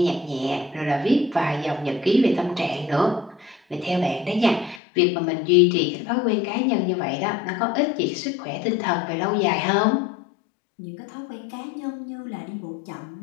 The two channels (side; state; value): right; drops out; at 4.8 s